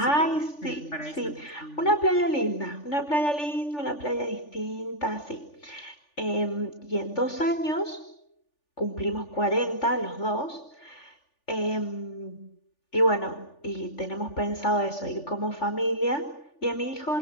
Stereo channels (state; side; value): late; right; 3.4 ms